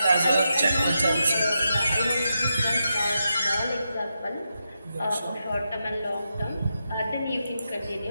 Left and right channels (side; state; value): both; inverted; correlation -0.86